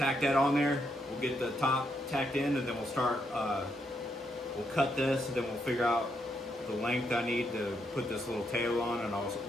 that on there. We'll get the top tacked in, and then we'll start, we'll cut this, and then we'll figure out the length I need to put this little tail on, and I'll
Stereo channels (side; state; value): both; normal; correlation 0.78